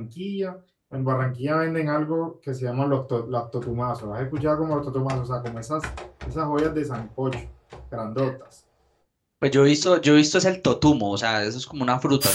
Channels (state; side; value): identical; both; correlation 1.00